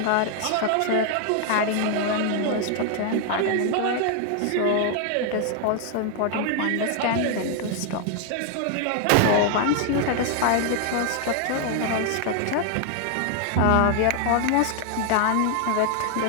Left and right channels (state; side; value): different; both; correlation 0.00